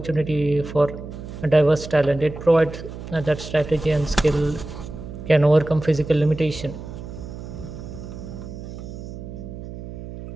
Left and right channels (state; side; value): noise; right; hum, 11 dB below the sound